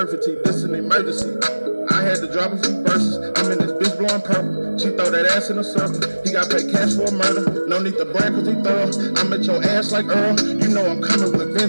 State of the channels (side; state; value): both; inverted; correlation -1.00